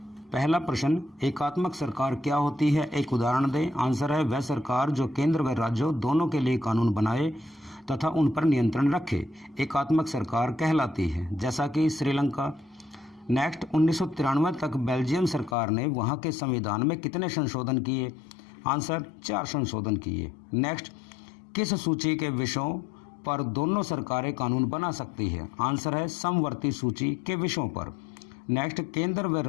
पहला प्रश्न, एकात्मक सरकार क्या होती है? एक उदाहरण दें। आंसर है वह सरकार जो केंद्र व राज्यों दोनों के लिए कानून बनाए तथा उन पर नियंत्रण रखे, एकात्मक सरकार कहलाती है, जैसा कि श्रीलंका। नेक्स्ट, 1993 तक बेल्जियम सरकार ने वहां के संविधान में कितने संशोधन किए? आंसर 4 संशोधन किए। नेक्स्ट, किस सूची के विषयों पर दोनों सरकारें कानून बना सकती है? आंसर है समवर्ती सूची के विषयों पर। नेक्स्ट, केंद्र व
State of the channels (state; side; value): drops out; right; at 15.6 s